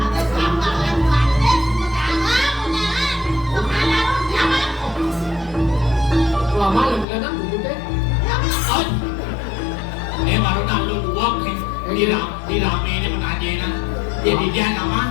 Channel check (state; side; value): drops out; right; at 7.1 s